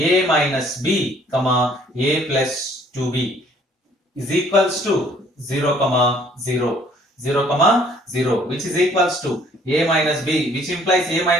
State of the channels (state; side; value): normal; both; correlation 0.59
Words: minus b comma a plus 2b is equals to 0 comma 0, which is equals to a minus b, which implies a